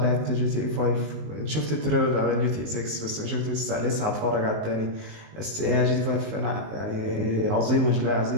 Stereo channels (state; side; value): late; left; 19 ms